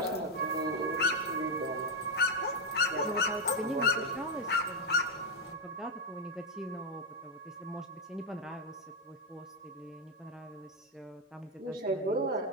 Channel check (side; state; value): both; normal; correlation 0.03